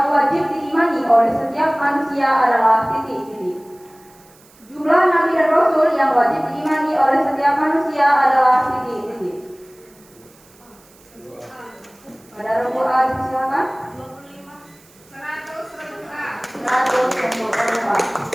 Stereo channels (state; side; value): noise; right; hiss, 28 dB below the sound